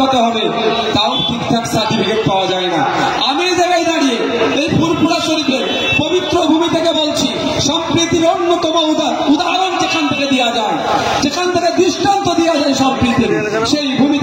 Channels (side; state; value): both; identical; correlation 1.00